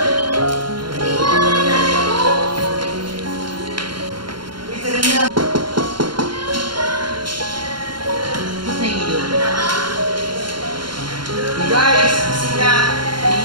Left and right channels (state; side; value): late; left; 0.72 ms